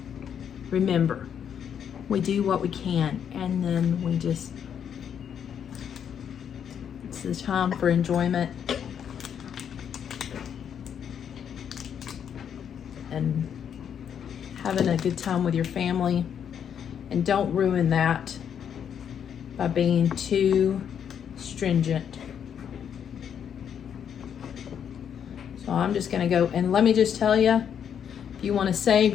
remember, we do what we can, and then we just, it's the time for enjoyment and having a good time with your family. And don't ruin that by being too stringent. So I'm just gonna go, and let me just tell you, if you want to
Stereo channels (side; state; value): right; quieter; 8.4 dB